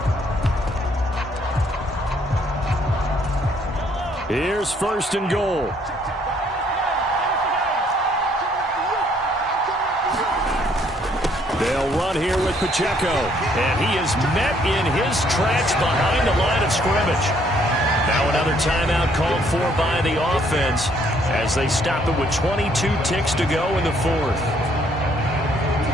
Here's 1st and goal. They'll run here with Pacheco. And he is met in his tracks behind the line of scrimmage. Now another timeout called for by the offense as they stop it with 22 ticks to go in the 4th.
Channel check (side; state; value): both; normal; correlation 0.66